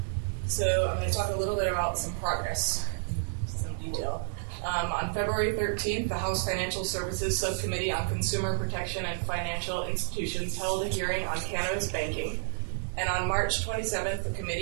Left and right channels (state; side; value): silent; left; digital silence